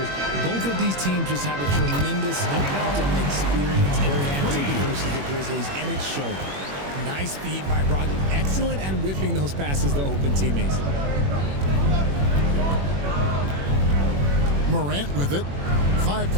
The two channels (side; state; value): left; late; 21 ms